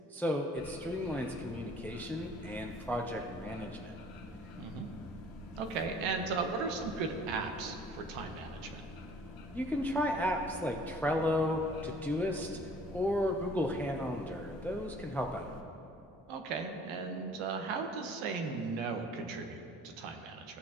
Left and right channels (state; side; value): normal; both; correlation 0.53